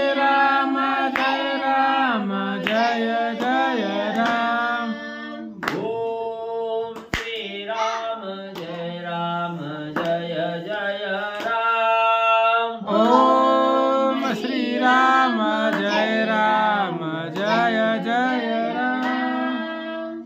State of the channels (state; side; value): identical; both; correlation 1.00